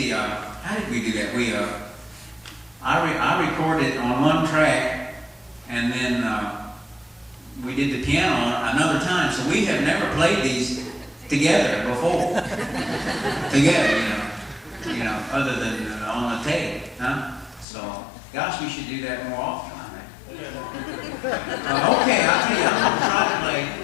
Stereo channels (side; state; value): right; drops out; at 17.7 s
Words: how did we do that? I recorded on one track, and then we did the piano on another time. So we have never played these together before. Together, you know, other than on the tape, huh? So, gosh, we should do that more often. Okay, I'll tell you, I'm going to try to play